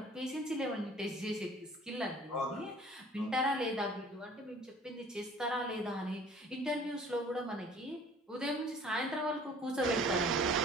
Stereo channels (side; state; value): both; normal; correlation 0.51